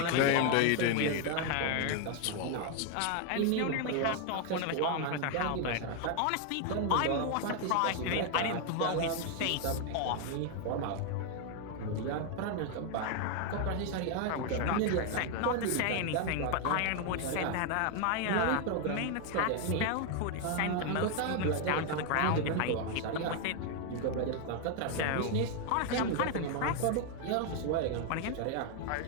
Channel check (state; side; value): different; both; correlation 0.01